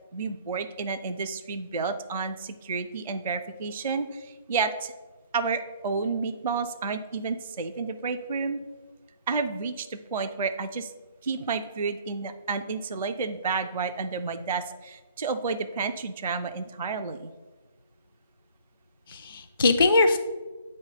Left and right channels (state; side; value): inverted; both; correlation -0.54